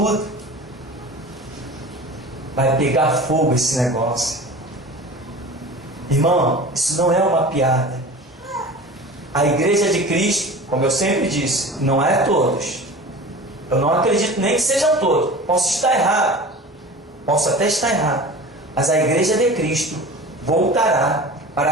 Vai pegar fogo esse negócio. Irmão, isso não é uma piada. A igreja de Cristo, como eu sempre disse, não é todos. Eu não acredito nem que sejam todos. Posso estar errado. Posso até estar errado. Mas a igreja de Cristo voltará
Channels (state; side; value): normal; both; correlation 0.37